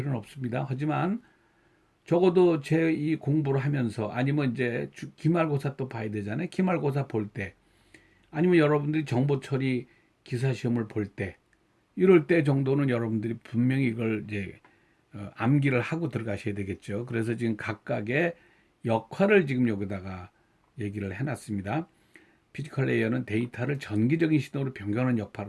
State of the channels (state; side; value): identical; both; correlation 1.00